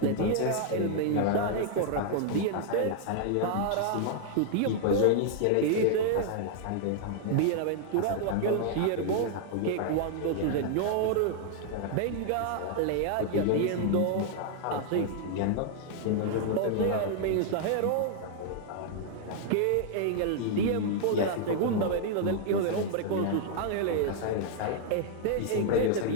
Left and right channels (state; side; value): different; both; correlation -0.01